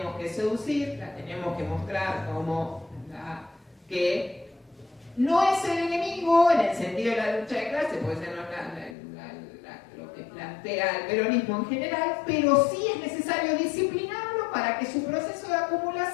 que seducir, la tenemos que mostrar como que no es el enemigo en el sentido de la lucha de clase, puede ser lo que plantea el peronismo en general, pero sí es necesario disciplinarlo para que su proceso de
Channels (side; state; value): right; drops out; at 9.0 s